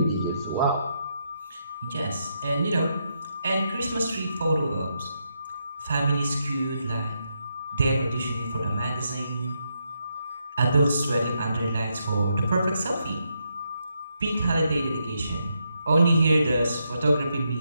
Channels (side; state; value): both; inverted; correlation -0.80